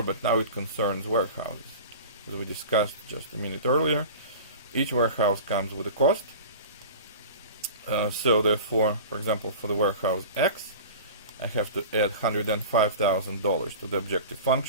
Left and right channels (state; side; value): inverted; both; correlation -0.36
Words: but now it concerns warehouses. As we discussed just a minute earlier, each warehouse comes with a cost. So therefore, for example, for the warehouse X, I have to add $105,000 to the objective